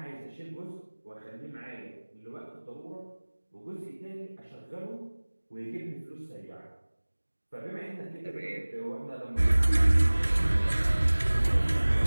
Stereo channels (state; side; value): inverted; both; correlation -1.00